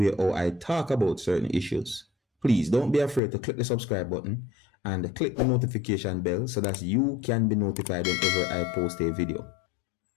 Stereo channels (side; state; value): right; drops out; at 3.2 s